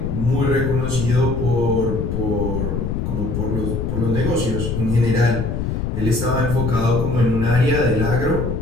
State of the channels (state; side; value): noise; left; rumble, 2 dB below the sound